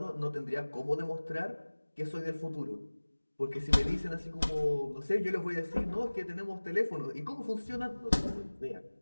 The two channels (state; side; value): inverted; both; correlation -1.00